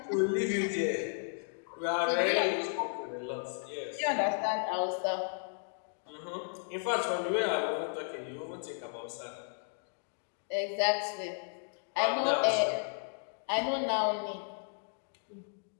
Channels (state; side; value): silent; right; digital silence